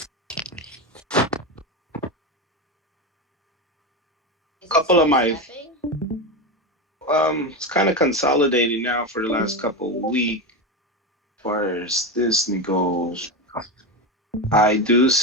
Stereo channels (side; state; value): both; normal; correlation 0.16